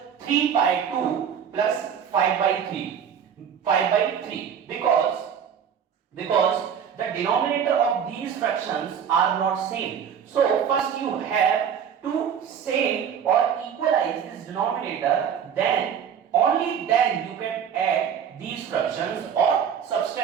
3 by 2 plus 5 by 3 because the denominator of these fractions are not same. So first you have to same or equalize this denominator, then only then you can add these fractions or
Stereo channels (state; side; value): quieter; left; 8.0 dB